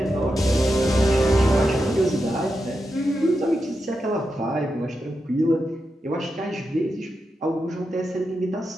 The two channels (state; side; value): normal; both; correlation 0.87